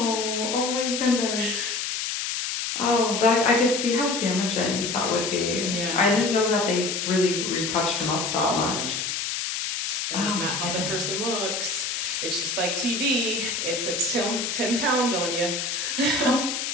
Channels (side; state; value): left; noise; hiss, 2 dB below the sound